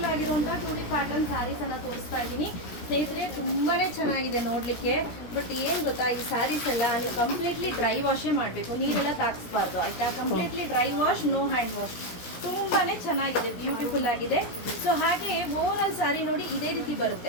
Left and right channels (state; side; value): late; right; 17 ms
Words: ಆಗಿರುವಂತಹ ಟೂಡಿ ಪ್ಯಾಟರ್ನ್ ಸ್ಯಾರೀಸ್ ಅನ್ನ ತೋರಿಸ್ತಾ ಇದ್ದೀನಿ ಸ್ನೇಹಿತರೆ. ತುಂಬಾನೇ ಚೆನ್ನಾಗಿದೆ ನೋಡ್ಲಿಕ್ಕೆ. ಬಟ್ ಏನ್ ಗೊತ್ತಾ, ಈ ಸ್ಯಾರೀಸ್ ಎಲ್ಲ ನೀವು ಕಂಪ್ಲೀಟ್ಲಿ ಡ್ರೈ ವಾಶೇ ಮಾಡಬೇಕು, ನೀರೆಲ್ಲ ತಾಗಿಸ್ಬಾರ್ದು ಆಯ್ತಾ. Completely dry wash, no hand wash. ತುಂಬಾನೇ ಚೆನ್ನಾಗಿದೆ, ಬ್ಯೂಟಿಫುಲ್ ಆಗಿದೆ. ಸೊ ಹಾಗೆ ಓವರ್ ಆಲ್ ಸ್ಯಾರಿ ನೋಡಿ ಇದೇ ರೀತಿ